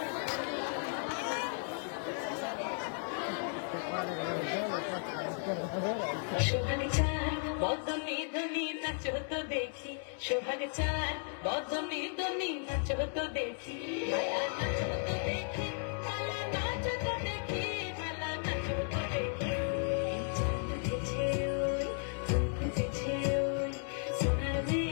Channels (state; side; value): silent; right; 54 dB below the other